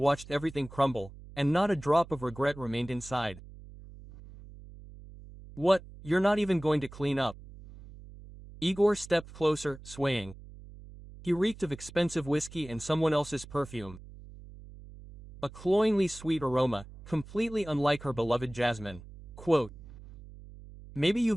everything crumble, and not a drop of regret remained inside. "What, you're not even going to clean up?" Igor stepped closer, swaying. He reeked of expensive whiskey and someone else's perfume. A cloyingly sweet aroma, completely unlike her beloved jasmine. Quote, "Maybe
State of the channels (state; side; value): noise; right; hum, 17 dB below the sound